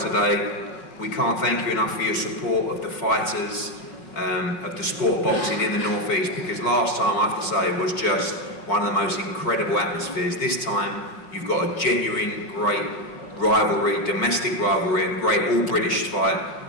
We can't thank you enough for your support of the fighters, of the sport boxing in the North East, because last time, I have to say, was just one of the most incredible atmospheres. This time, you've got a genuine, great rivalry, domestic rivalry, and great all-British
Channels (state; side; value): late; right; 5.4 ms